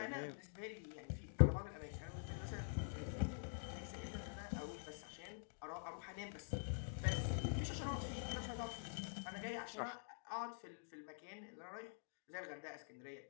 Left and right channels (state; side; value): silent; right; digital silence